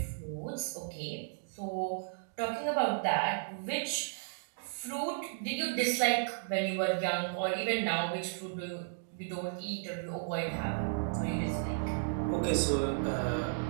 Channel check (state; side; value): silent; left; digital silence